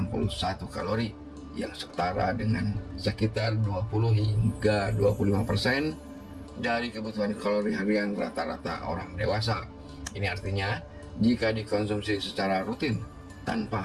kalori yang setara dengan sekitar 20 hingga 25% dari kebutuhan kalori harian rata-rata orang dewasa. Ini artinya jika dikonsumsi secara rutin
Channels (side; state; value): both; identical; correlation 1.00